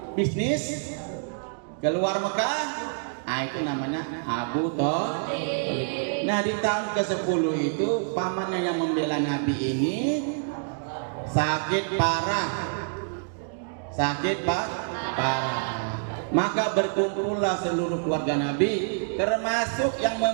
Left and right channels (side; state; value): left; silent; digital silence